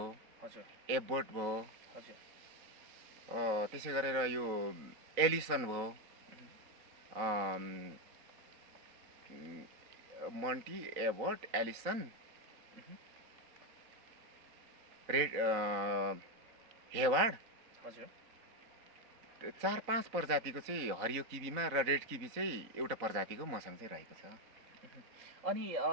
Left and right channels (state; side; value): late; left; 3.9 ms